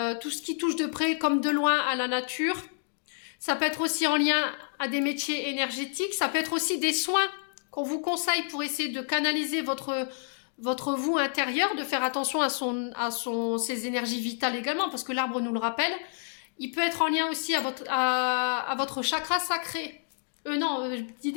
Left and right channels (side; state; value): right; silent; digital silence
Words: ce qui touche de près comme de loin à la nature. Ça peut être aussi en lien à des métiers énergétiques, ça peut être aussi des soins qu'on vous conseille pour essayer de canaliser votre vous intérieur, de faire attention à ses énergies vitales également, parce que l'arbre nous le rappelle. Il peut être en lien aussi à votre chakra sacré. Non, je dis